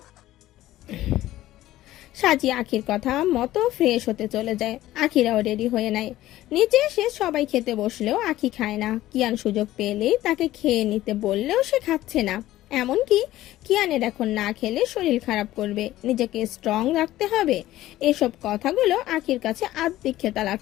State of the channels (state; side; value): quieter; right; 15.1 dB